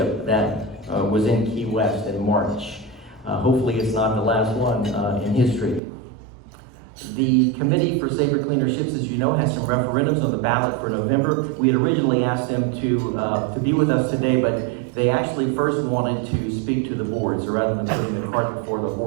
that was in Key West in March. Hopefully it's not the last one in history. The Committee for Safer, Cleaner Ships, as you know, has some referendums on the ballot for November. We had originally asked them to be with us today, but they actually first wanted to speak to the board. So rather than putting the cart before the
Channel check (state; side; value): drops out; left; at 5.8 s